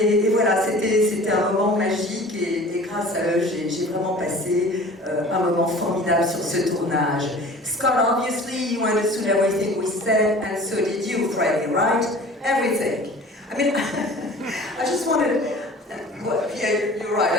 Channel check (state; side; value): normal; both; correlation 0.43